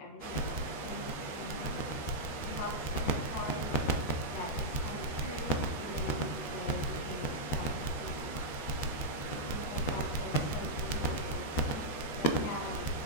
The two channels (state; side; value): late; right; 13 ms